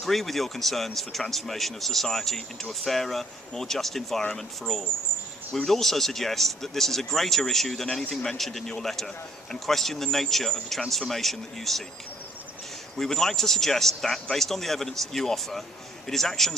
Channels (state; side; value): normal; both; correlation 0.61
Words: with your concerns for transformation of society into a fairer, more just environment for all. We would also suggest that this is a greater issue than anything mentioned in your letter and question the nature of the transformation that you seek. We would like to suggest that, based on the evidence that you offer, it is